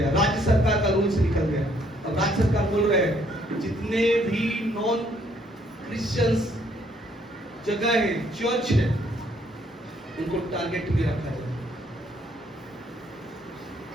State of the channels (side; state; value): both; normal; correlation 0.67